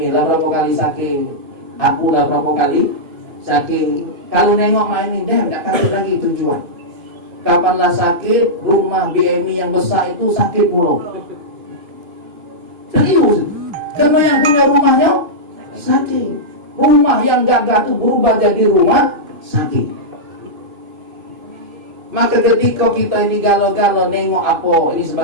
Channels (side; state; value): left; late; 2.5 ms